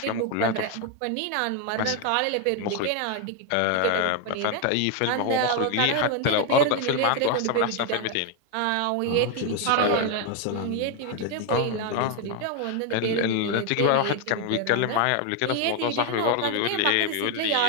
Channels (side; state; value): both; different; correlation 0.01